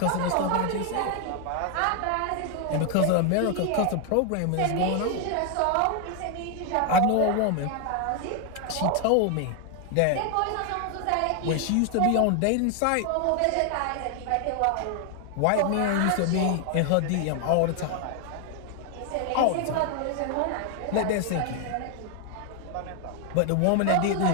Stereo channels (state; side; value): different; both; correlation 0.00